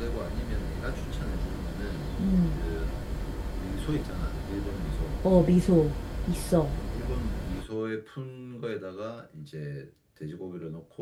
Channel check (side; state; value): both; identical; correlation 1.00